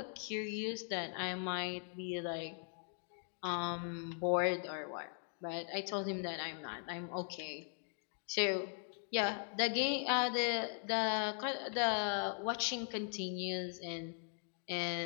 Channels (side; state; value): right; silent; 51 dB below the other